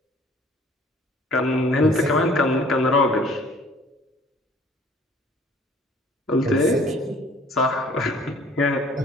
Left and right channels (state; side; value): normal; both; correlation 0.53